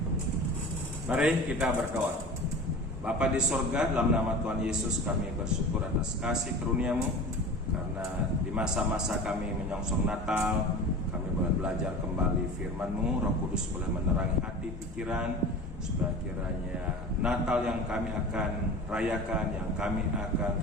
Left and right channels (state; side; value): normal; both; correlation 0.36